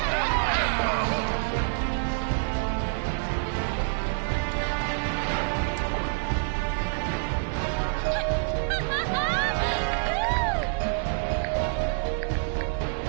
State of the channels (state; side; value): silent; left; 60 dB below the other